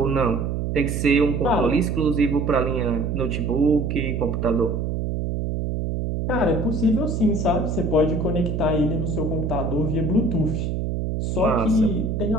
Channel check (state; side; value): noise; right; hum, 1 dB below the sound